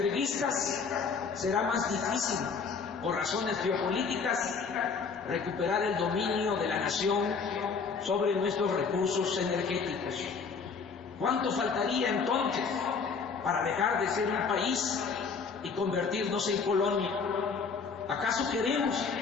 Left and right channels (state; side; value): quieter; right; 5.4 dB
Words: será más difícil, por razones geopolíticas, recuperar el dominio de la nación sobre nuestros recursos energéticos. ¿Cuánto faltaría entonces para dejar de ser un país y convertirnos en colonia? ¿Acaso queremos